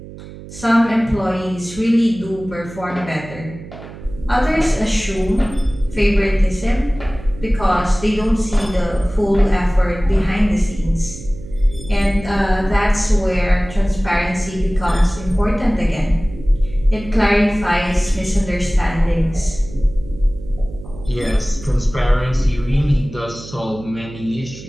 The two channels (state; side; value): noise; right; hum, 15 dB below the sound